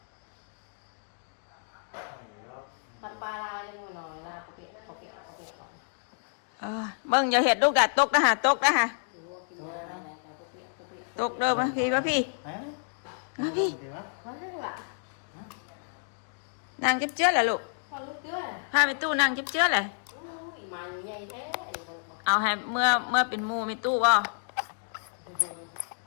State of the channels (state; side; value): silent; right; digital silence